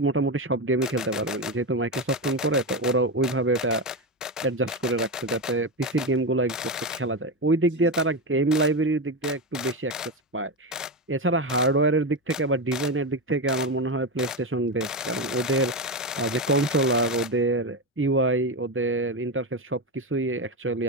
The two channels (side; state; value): both; normal; correlation 0.14